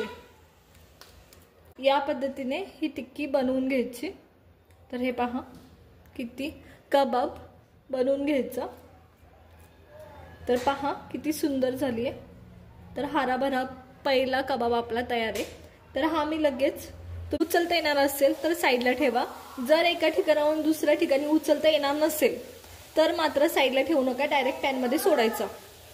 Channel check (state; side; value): identical; both; correlation 1.00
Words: या पद्धतीने ही टिक्की बनवून घ्यायची. तर हे पहा किती कबाब बनवून घ्यायचा. तर पहा किती सुंदर झाली आहे. तर हराभरा पहिला कबाब आपला तयार आहे. तर हा मी लगेच उचलता येणार असेल तर साईडला ठेवा. जर एका ठिकाणाहून दुसऱ्या ठिकाणी उचलता येणार नसेल तर मात्र साईडला ठेवू नका, डायरेक्ट पॅनमध्ये सोडायचा.